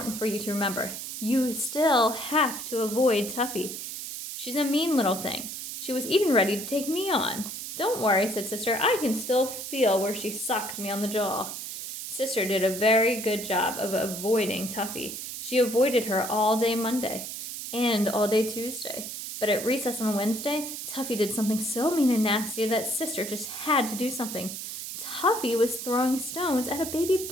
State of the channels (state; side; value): noise; right; hiss, 7 dB below the sound